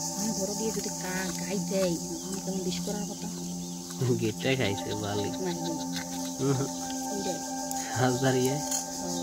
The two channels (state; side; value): identical; both; correlation 1.00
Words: বড় দিয়ে যদি গাই দেয় কেমন বিষ করার কথা গেটটা খাইছে ভালো